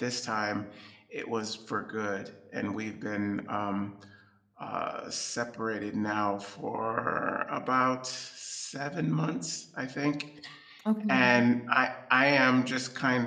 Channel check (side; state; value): both; identical; correlation 1.00